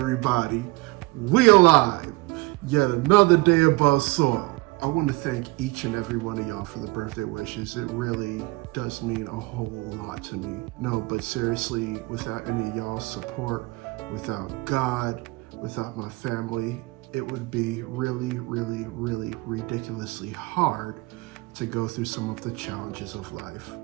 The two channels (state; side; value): quieter; left; 23.1 dB